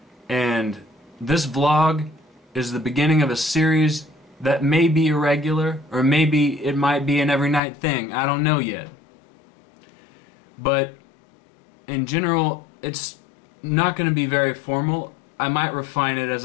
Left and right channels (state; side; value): drops out; right; at 7.6 s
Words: and this vlog is the beginning of a series that may be irregular, or maybe it might be an every night thing. I don't know yet. But in general, it's not going to be very formal. I might refine it